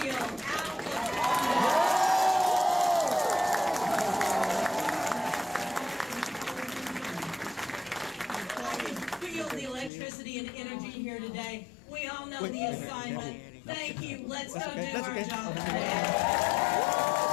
out of feel the electricity and energy here today. We all know the assignment. Thank you. Let's go do our job today.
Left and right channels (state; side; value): drops out; right; at 9.9 s